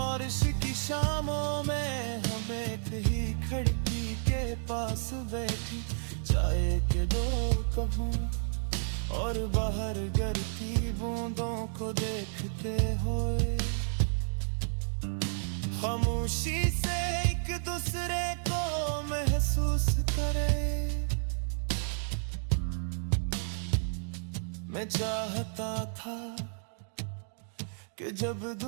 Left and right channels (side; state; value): left; silent; digital silence